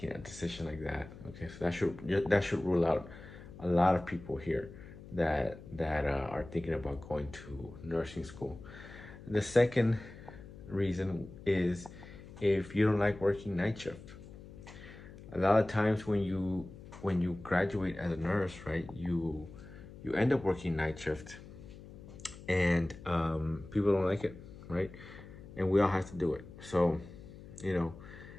a decision like that. Okay, so that should rule out a lot of people here that are thinking about going to nursing school. The second reason is if you don't like working night shift. A lot of times when you graduate as a nurse, right, you end up working night shift, and people don't like it, right? And we all have to do it. So,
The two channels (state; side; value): noise; left; hum, 16 dB below the sound